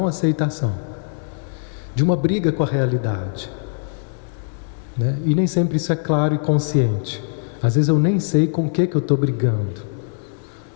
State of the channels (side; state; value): right; silent; 61 dB below the other